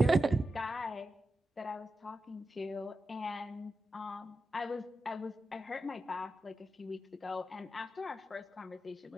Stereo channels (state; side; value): normal; both; correlation 0.90